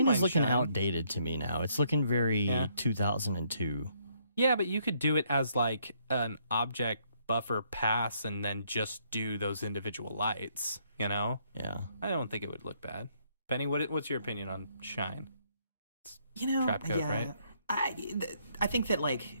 is mind looking Shine. outdated to me now. It's looking very 2002. Yeah, but you could do it as like an object buffer pass and then just do those individual lights, you know? Yeah. I don't think it would look bad. Benny, what's your opinion on Shine? You know, Trap code, right? I think that, like,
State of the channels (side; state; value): both; inverted; correlation -0.70